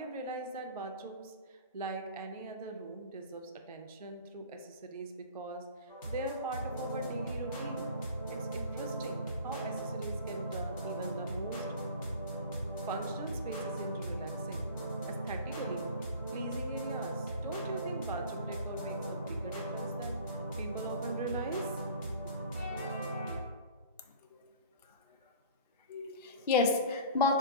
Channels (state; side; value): inverted; both; correlation -0.43